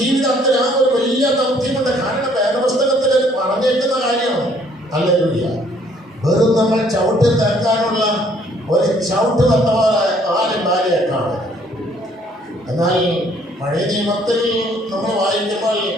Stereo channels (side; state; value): both; normal; correlation 0.62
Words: ആ ഒരു വലിയ ദൗത്യമുണ്ട്. കാരണം വേദപുസ്തകത്തിൽ പറഞ്ഞേക്കുന്ന കാര്യമാണ്. ഹല്ലേലൂയ. വെറും നമ്മൾ ചവിട്ടി തേക്കാനുള്ള ഒരു ചവിട്ട് വന്ന പോലെ ആരും ഭാര്യയെ കാണും. എന്നാൽ പഴയ നിയമത്തിൽ നമ്മൾ വായിക്കുമ്പോൾ